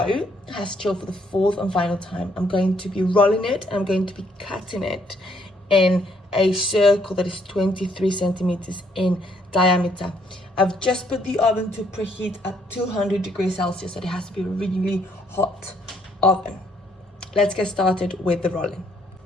has chilled for the 4th and final time, I'm going to be rolling it. I'm going to be cutting it in a circle that is 23 centimeters in diameter. I've just put the oven to preheat at 200 degrees Celsius, so it has to be a really hot oven. Let's get started with the rolling.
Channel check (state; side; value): normal; both; correlation 0.69